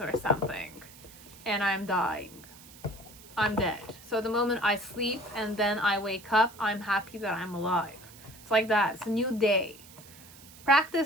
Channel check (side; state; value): right; noise; hiss, 20 dB below the sound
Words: something, and I'm dying. I'm dead. So the moment I sleep and then I wake up, I'm happy that I'm alive. It's like that. It's a new day.